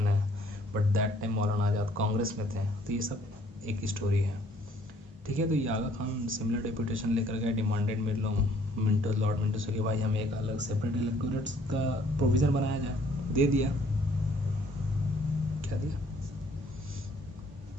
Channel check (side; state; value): both; normal; correlation 0.61